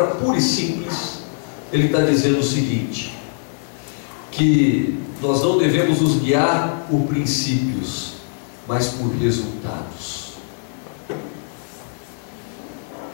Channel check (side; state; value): right; silent; digital silence